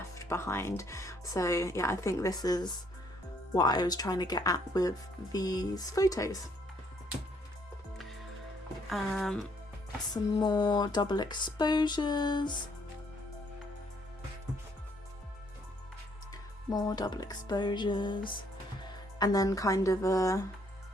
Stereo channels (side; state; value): both; normal; correlation 0.67